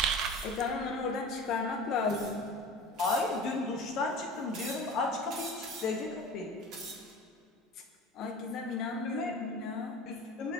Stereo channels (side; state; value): both; normal; correlation 0.36